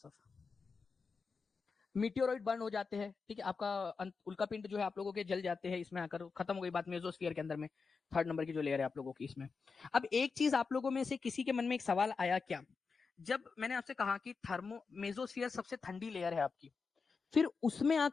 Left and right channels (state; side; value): quieter; right; 4.9 dB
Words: मीटियोरॉइड बर्न हो जाते हैं, ठीक है, आपका उल्का पिंड जो है आप लोगों के जल जाते हैं, इसमें आकर खत्म हो गई बात मेसोस्फीयर के अंदर में, थर्ड नंबर की जो लेयर है आप लोगों की इसमें। अब एक चीज आप लोगों में से किसी के मन में एक सवाल आया क्या, जब मैंने आपसे कहा कि मेसोस्फीयर सबसे ठंडी लेयर है आपकी, फिर उसमें